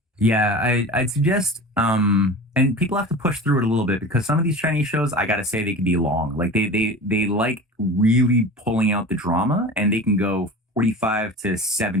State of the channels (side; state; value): both; normal; correlation 0.35